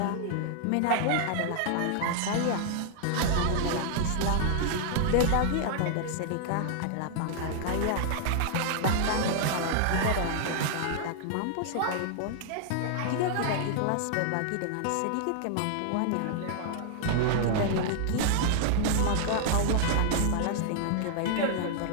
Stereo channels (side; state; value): both; different; correlation 0.00